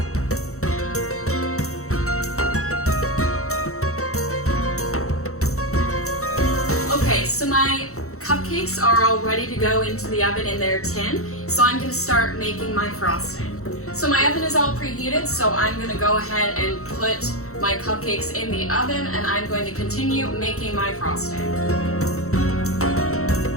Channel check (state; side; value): late; right; 0.64 ms